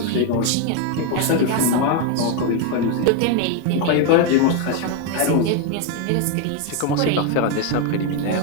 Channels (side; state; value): both; different; correlation 0.01